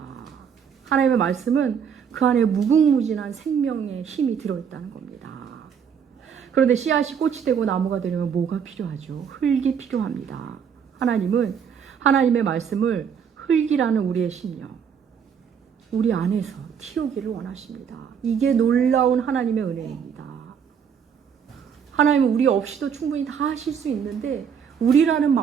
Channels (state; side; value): quieter; left; 7.3 dB